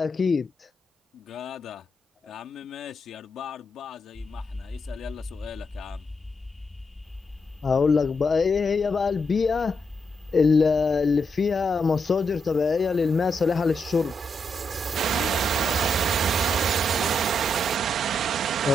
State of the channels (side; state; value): both; normal; correlation 0.82